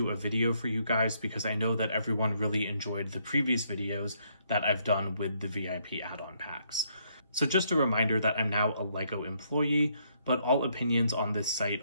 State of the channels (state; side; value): inverted; both; correlation -0.71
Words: a video for you guys because I know that everyone really enjoyed the previous videos that I've done with the VIP add-on packs. So just a reminder that I'm now a LEGO employee, but all opinions on this site